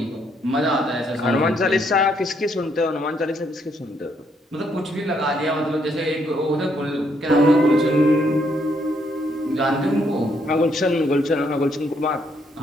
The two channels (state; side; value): normal; both; correlation 0.72